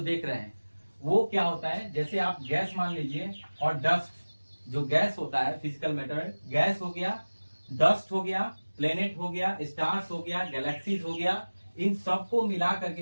देख रहे हैं वो क्या होता है। जैसे आप गैस मान लीजिए और डस्ट, जो गैस होता है फिजिकल मैटर, गैस हो गया, डस्ट हो गया, प्लेनेट हो गया, स्टार्स हो गया, गैलेक्सीज हो गया, इन सबको मिला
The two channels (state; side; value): inverted; both; correlation -1.00